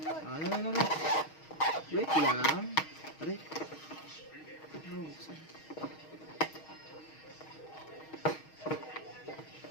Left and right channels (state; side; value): late; right; 6.4 ms